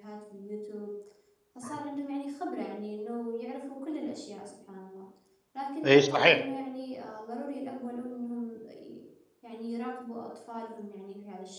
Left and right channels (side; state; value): both; identical; correlation 1.00